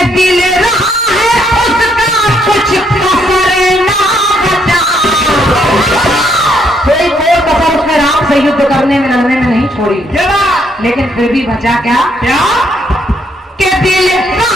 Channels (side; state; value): both; normal; correlation 0.72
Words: दिल रहा है उसका कुछ कसर ना बचा, कोई कोई कसर उसने राम से युद्ध करने में लड़ने में नहीं छोड़ी, लेकिन फिर भी बचा क्या? के दिल